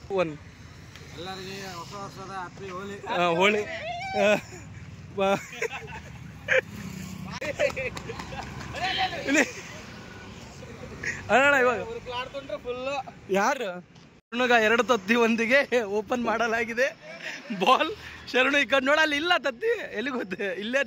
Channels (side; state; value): both; identical; correlation 1.00